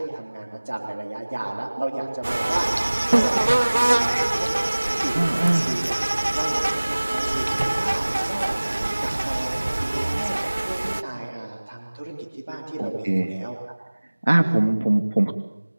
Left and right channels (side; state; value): both; inverted; correlation -1.00